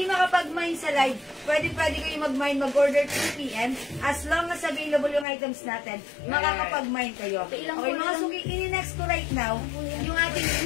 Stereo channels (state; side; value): drops out; right; at 5.2 s